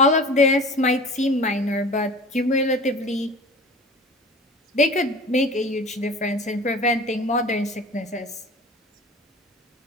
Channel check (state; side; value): normal; both; correlation 0.39